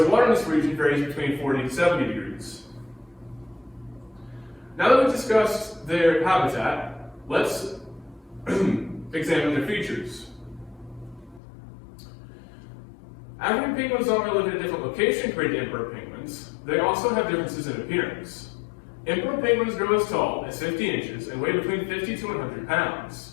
water in this region varies between 40 to 70 degrees. Now that we've discussed their habitat, let's examine their features. African penguins not only live in a different location compared to emperor penguins, they also have differences in appearance. Emperor penguins grow as tall as 50 inches and weigh between 50 to 100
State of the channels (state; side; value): drops out; right; at 11.4 s